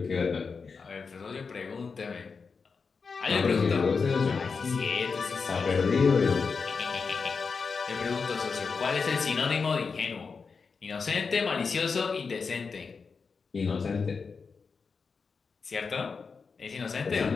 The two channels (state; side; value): quieter; right; 5.1 dB